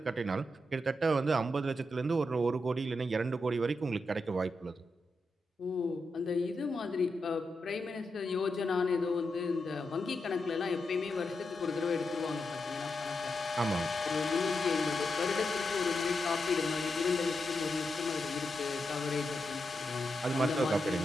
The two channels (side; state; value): both; normal; correlation 0.86